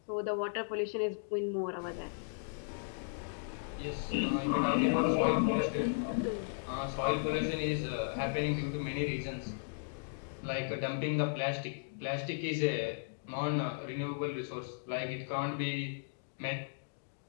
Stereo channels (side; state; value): right; silent; digital silence